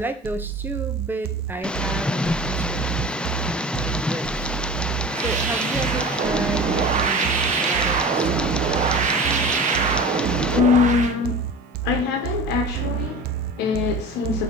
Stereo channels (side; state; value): both; normal; correlation 0.36